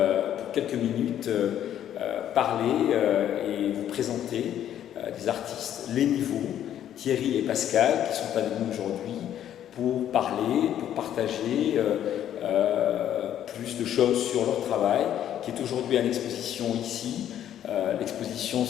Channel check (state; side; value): quieter; right; 10.8 dB